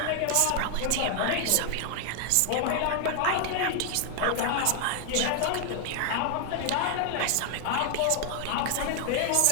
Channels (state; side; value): different; both; correlation 0.00